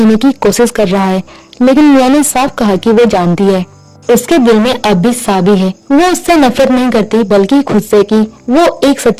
की कोशिश कर रहा है, लेकिन मियाँ ने साफ कहा कि वो जानती है उसके दिल में अब भी साबी है। वो उससे नफरत नहीं करती, बल्कि खुद से कि वो एक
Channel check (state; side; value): identical; both; correlation 1.00